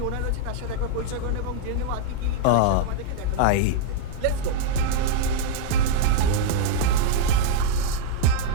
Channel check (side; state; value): both; different; correlation -0.01